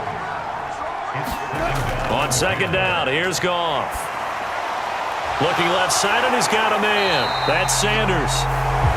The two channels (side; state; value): both; identical; correlation 1.00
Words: On second down, here's Goff. Looking left side, and he's got a man. That's Sanders.